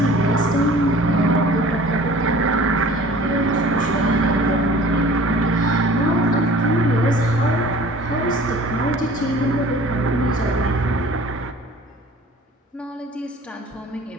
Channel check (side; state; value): both; normal; correlation 0.46